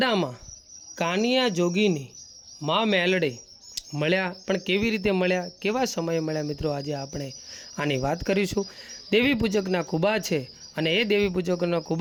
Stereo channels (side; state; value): both; identical; correlation 1.00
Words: કાનિયા જોગીની માં મેલડી મળ્યા, પણ કેવી રીતે મળ્યા, કેવા સમયે મળ્યા મિત્રો, આજે આપણે આની વાત કરીશું। દેવી પૂજકના કુબા છે અને એ દેવી પૂજકોના